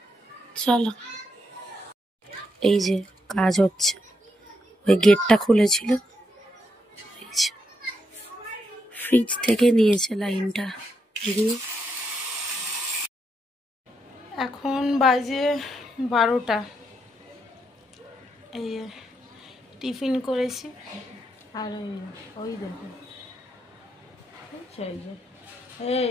চলো, এই যে কাজ হচ্ছে, ওই গেটটা খুলেছিল, ফ্রিজ থেকে নিয়েছে লাইনটা দিয়ে। এখন বাজে 12টা। এই টিফিন করেছি। আর ওই দেখো,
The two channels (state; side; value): normal; both; correlation 0.80